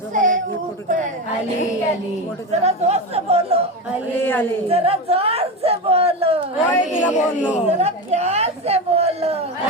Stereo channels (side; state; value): both; normal; correlation 0.19